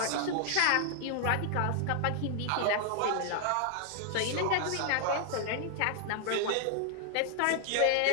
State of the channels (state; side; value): different; both; correlation 0.00